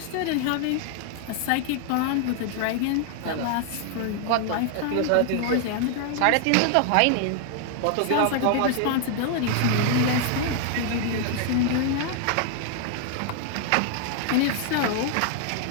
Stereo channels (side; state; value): both; different; correlation 0.00